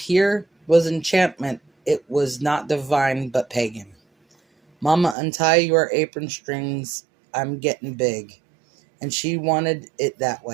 was enchantment, it was not divine but pagan. Mama, untie your apron strings. I'm getting big. And she wanted it that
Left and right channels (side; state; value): left; drops out; at 5.2 s